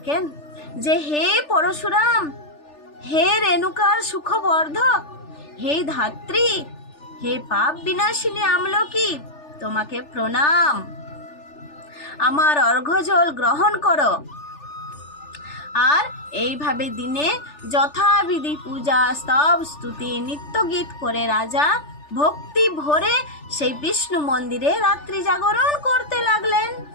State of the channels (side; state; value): right; late; 3.4 ms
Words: যে হে পরশুরাম, হে রেণুকার সুখবর্ধক, হে ধাত্রী, হে পাপ বিনাশিনী আমলকি, তোমাকে প্রণাম, আমার অর্ঘ্যজল গ্রহণ করো। আর এইভাবে দিনে যথাবিধি পূজা, স্তব, স্তুতি, নিত্য গীত করে রাজা ভক্তি ভরে সেই বিষ্ণু মন্দিরে রাত্রি জাগরণ করতে লাগলেন।